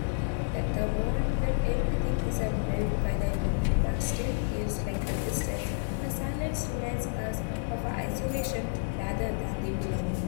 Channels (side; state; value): right; silent; digital silence